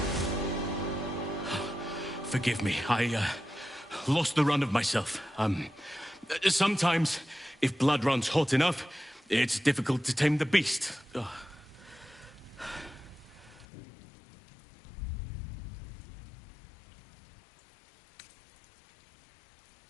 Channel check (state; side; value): drops out; right; at 13.7 s